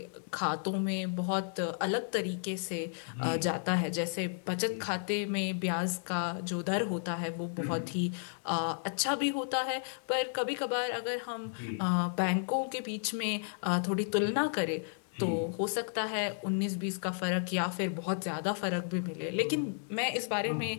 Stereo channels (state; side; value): silent; right; 56 dB below the other